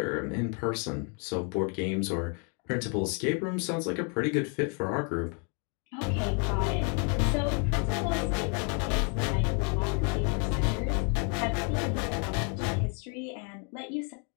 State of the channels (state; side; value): quieter; right; 37.5 dB